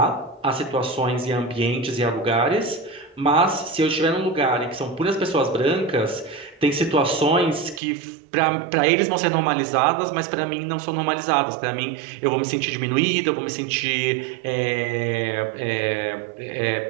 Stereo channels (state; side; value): drops out; left; at 7.8 s